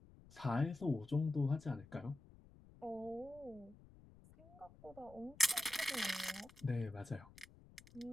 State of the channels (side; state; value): left; noise; rumble, 22 dB below the sound